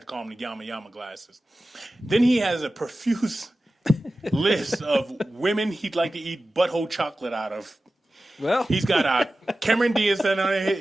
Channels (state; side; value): normal; both; correlation 0.95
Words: call them the Yama Yama glasses. Then he has a profuse list of women he'd like to eat butthole chocolate out of. Well, he's got Cameron Diaz on there.